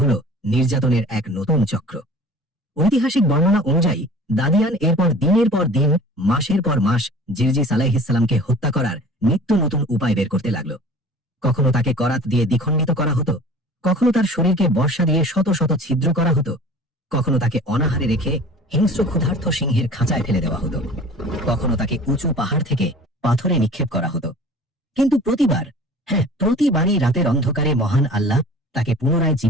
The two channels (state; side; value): normal; both; correlation 0.44